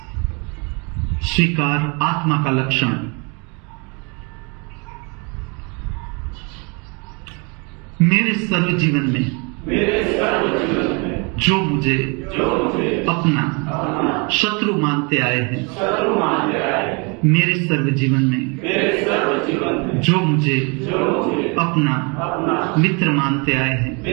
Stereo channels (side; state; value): left; quieter; 32.0 dB